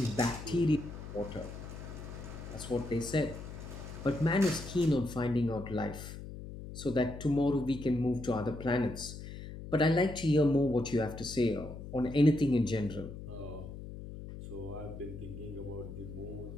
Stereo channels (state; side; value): noise; left; hum, 11 dB below the sound